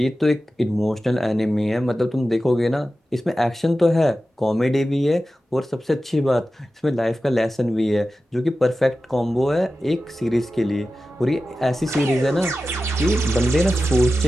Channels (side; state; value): both; normal; correlation 0.94